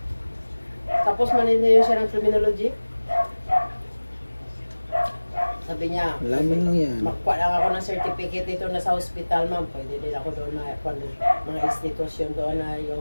Tapos maniniyo siya ng criminology. Sabi niya, Lamin lang yan. makuha lang ako ng certificate dito na sa hospital, ma'am. Pwede din ako doon na mga institusyon doon na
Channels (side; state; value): both; inverted; correlation -1.00